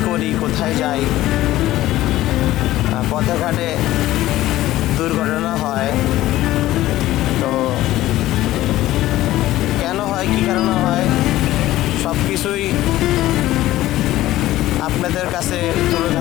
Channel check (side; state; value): right; quieter; 15.4 dB